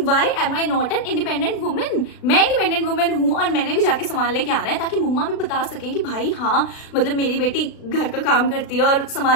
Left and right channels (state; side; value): late; right; 36 ms